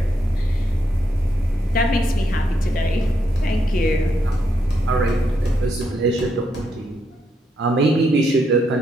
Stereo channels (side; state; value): both; normal; correlation 0.79